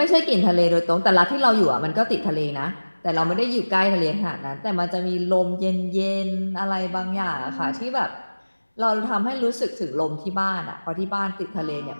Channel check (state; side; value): inverted; both; correlation -1.00